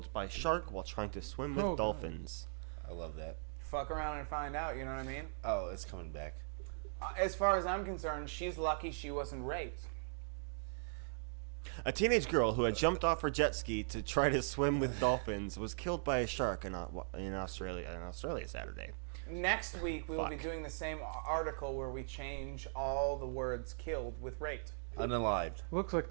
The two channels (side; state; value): left; silent; digital silence